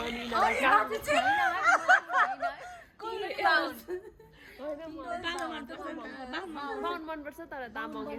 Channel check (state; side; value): identical; both; correlation 1.00